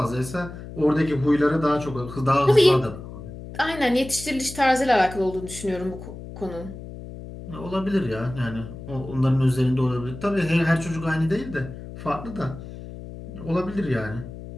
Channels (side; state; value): left; noise; hum, 12 dB below the sound